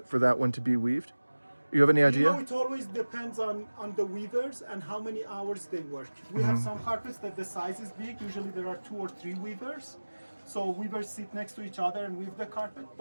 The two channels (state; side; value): inverted; both; correlation -1.00